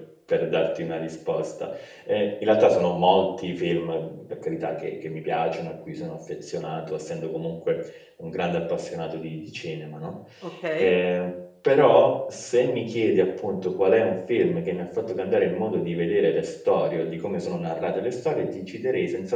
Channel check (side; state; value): both; identical; correlation 1.00